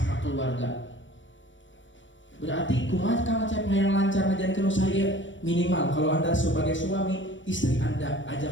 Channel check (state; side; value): late; right; 0.55 ms